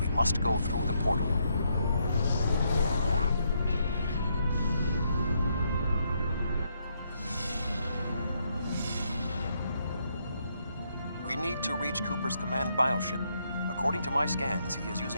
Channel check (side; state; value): both; inverted; correlation -0.76